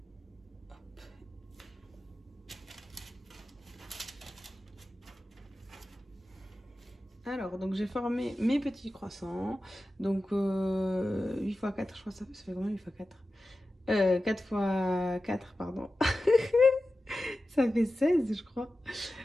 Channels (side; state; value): both; normal; correlation 0.93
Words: Hop. Alors, donc j'ai formé mes petits croissants. Donc 8 x 4, je crois que ça fait combien 8 x 4 4 x 4, pardon. Ça fait 16, je crois.